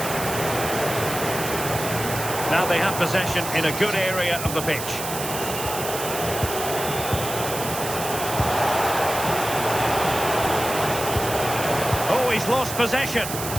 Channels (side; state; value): right; noise; hiss, 7 dB below the sound